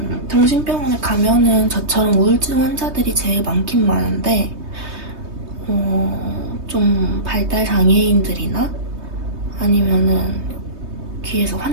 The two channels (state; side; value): late; left; 3.2 ms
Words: 정신병원에 가면은 저처럼 우울증 환자들이 제일 많긴 많은데 좀 발달 장애인들이나 아니면은 귀에서